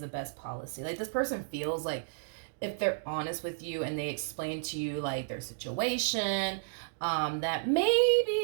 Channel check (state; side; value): silent; left; digital silence